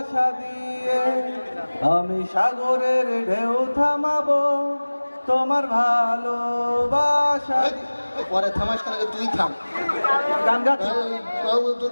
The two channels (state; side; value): inverted; both; correlation -1.00